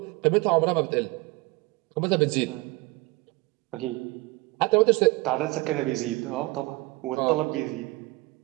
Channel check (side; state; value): left; quieter; 23.5 dB